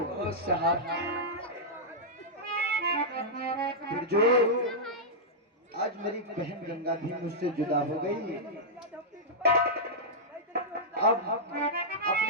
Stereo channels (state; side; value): normal; both; correlation -0.10